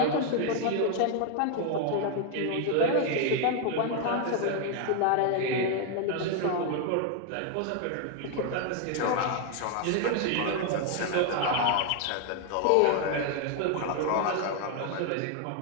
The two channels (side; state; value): both; different; correlation 0.01